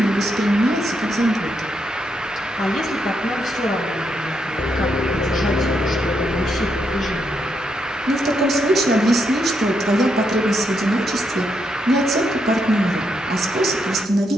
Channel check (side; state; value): both; normal; correlation 0.80